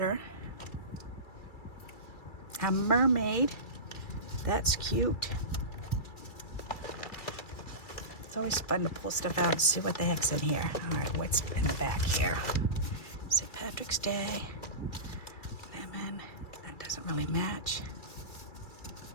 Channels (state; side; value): late; right; 2.3 ms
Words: A mermaid. That's cute. It's always fun to pull stuff out and see what the heck's in here. All right, what's in the back here? St. Patrick's Day. Lemon. That doesn't really match.